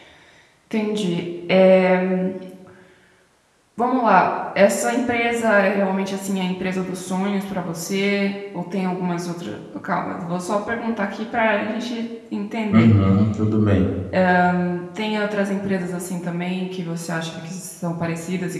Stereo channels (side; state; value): both; identical; correlation 1.00